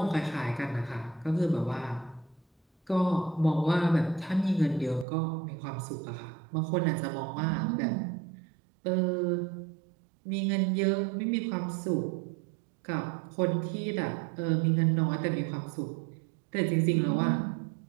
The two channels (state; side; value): drops out; left; at 5.1 s